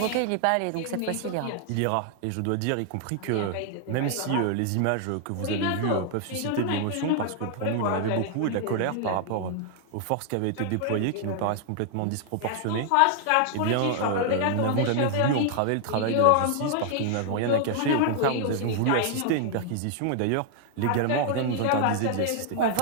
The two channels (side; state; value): both; different; correlation 0.00